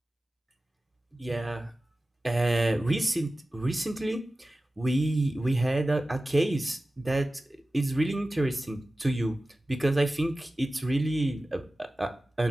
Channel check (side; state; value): both; normal; correlation 0.96